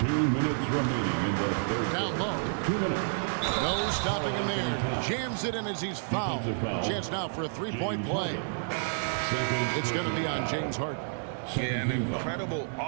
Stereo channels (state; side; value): silent; left; digital silence